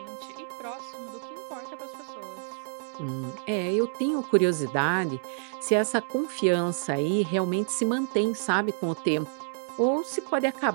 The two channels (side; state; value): left; silent; digital silence